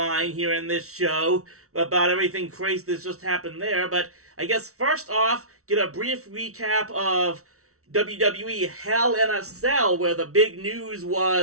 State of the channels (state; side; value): late; left; 0.64 ms